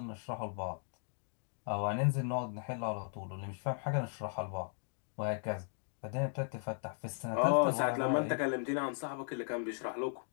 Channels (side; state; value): right; silent; 53 dB below the other